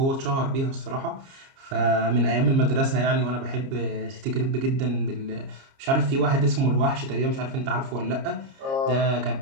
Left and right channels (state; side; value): late; left; 30 ms